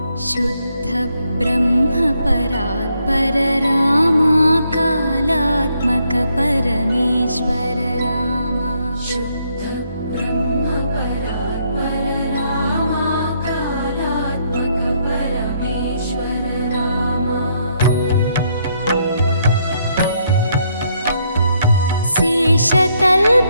शुद्ध ब्रह्म परात्पर रामा कालात्मक परमेश्वर रामा शुद्ध ब्रह्म परात्पर रामा कालात्मक परमेश्वर रामा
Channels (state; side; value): inverted; both; correlation -0.73